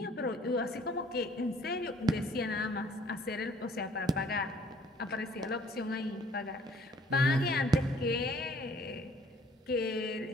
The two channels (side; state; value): both; normal; correlation 0.57